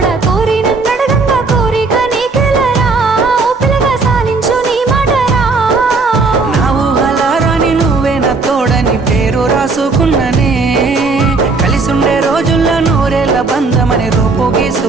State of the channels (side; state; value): left; quieter; 4.0 dB